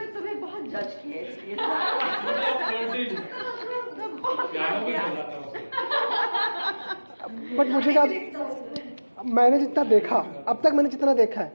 तुम्हें बहुत जज किया इसलिए। पियानो भी बजाता हूँ। बट मुझे क्या, मैंने जितना देखा अब तक, मैंने जितना देखा है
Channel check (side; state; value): both; inverted; correlation -1.00